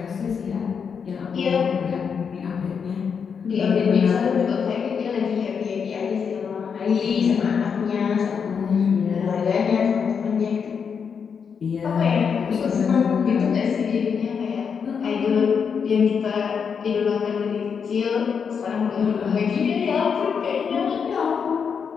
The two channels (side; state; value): right; quieter; 6.5 dB